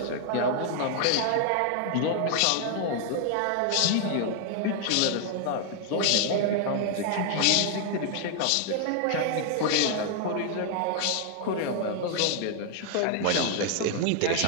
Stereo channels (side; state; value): both; different; correlation 0.00